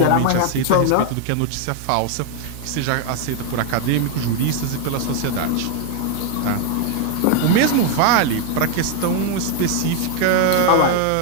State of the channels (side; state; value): both; different; correlation 0.00